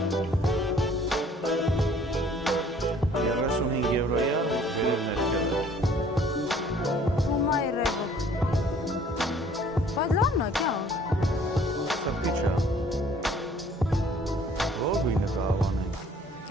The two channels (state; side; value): normal; both; correlation 0.56